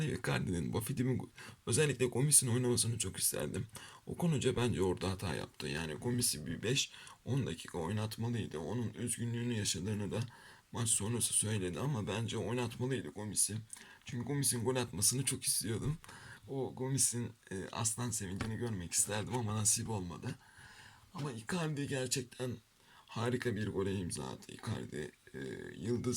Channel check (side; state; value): both; identical; correlation 1.00